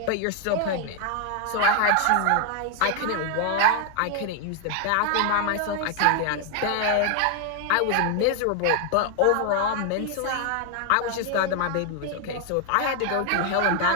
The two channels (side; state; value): both; different; correlation 0.00